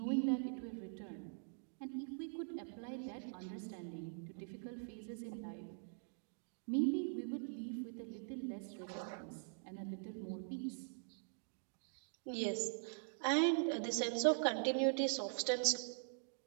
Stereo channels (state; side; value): silent; left; digital silence